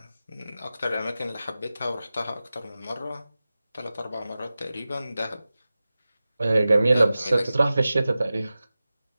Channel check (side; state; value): both; inverted; correlation -0.95